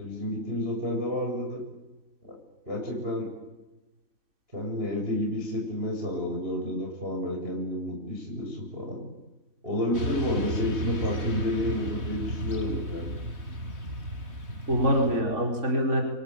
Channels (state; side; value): late; left; 3.2 ms